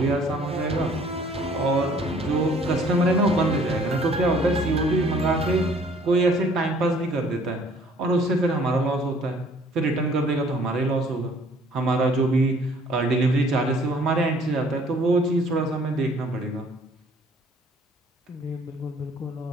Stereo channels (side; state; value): both; normal; correlation 0.57